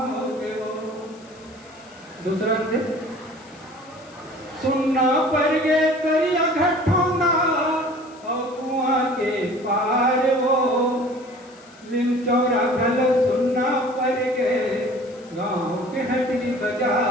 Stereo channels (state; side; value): noise; left; hiss, 26 dB below the sound